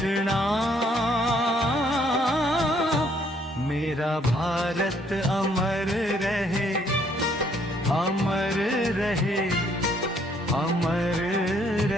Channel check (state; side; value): normal; both; correlation 0.67